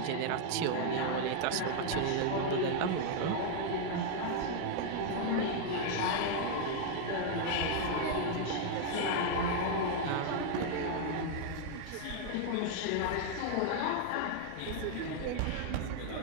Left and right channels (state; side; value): different; both; correlation 0.00